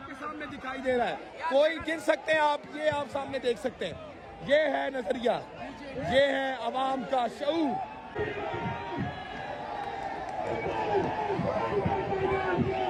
सामने दिखाई दे रहा है। कोई गिन सकते हैं आप, ये आप सामने देख सकते हैं। ये है नजरिया, ये है अवाम का शऊर।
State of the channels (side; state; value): both; identical; correlation 1.00